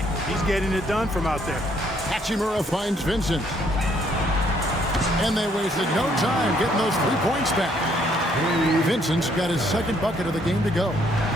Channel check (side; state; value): both; normal; correlation 0.67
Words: He's getting it done from out there. Hachimura finds Vincent. And they wasted no time getting those 3 points back. Vincent's got his 2nd bucket of the game to go. The